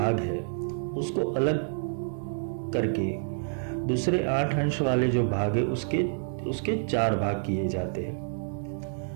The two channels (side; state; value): left; silent; 59 dB below the other